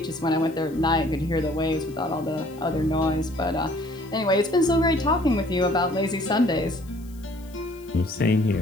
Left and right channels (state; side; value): noise; left; hiss, 26 dB below the sound